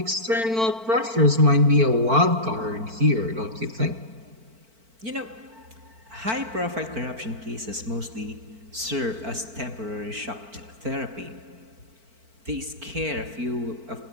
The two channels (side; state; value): left; late; 4.5 ms